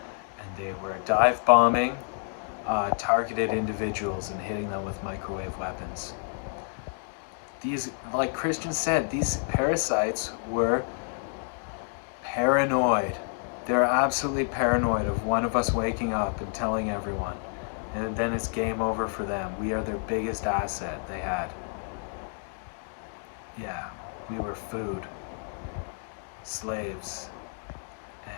and they were dive bombing targeted individuals and hitting them with microwave weapons. These, like Christian said, these parasites were paranoid. They're absolutely paranoid of one of us waking up and telling everyone. And then it's game over for them. We are their biggest asset they had. Yeah, we were food, slaves,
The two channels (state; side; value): silent; right; 58 dB below the other